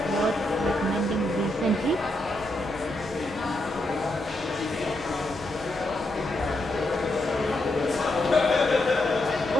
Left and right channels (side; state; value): both; normal; correlation 0.81